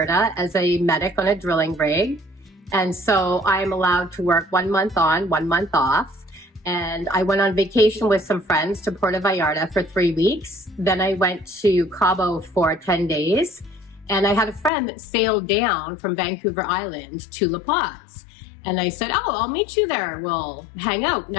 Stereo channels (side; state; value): right; drops out; at 14.7 s